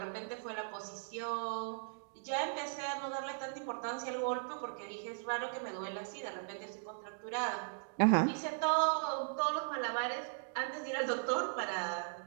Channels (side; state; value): left; silent; digital silence